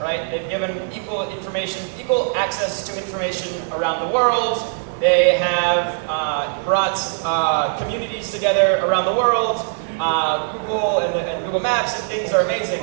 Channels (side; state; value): left; silent; digital silence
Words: right? They've given equal access to information around the world. They have brought communities together around the world. Google and Google Maps and things are amazing.